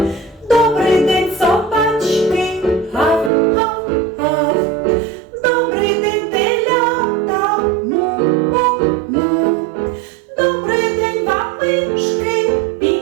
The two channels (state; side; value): drops out; left; at 3.3 s